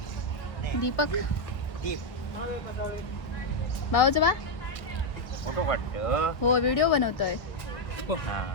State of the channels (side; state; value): right; late; 1.7 ms